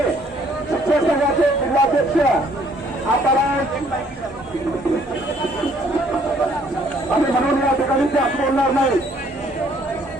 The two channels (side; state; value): both; normal; correlation 0.63